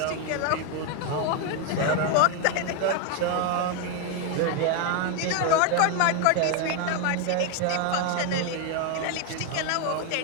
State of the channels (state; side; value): different; both; correlation 0.01